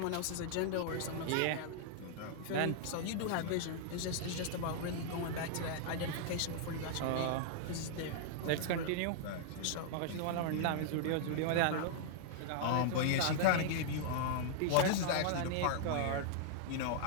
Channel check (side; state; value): both; different; correlation -0.01